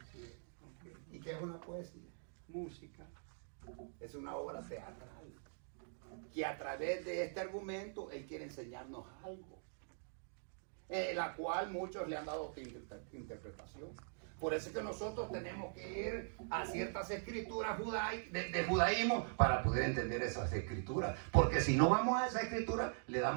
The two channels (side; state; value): left; silent; digital silence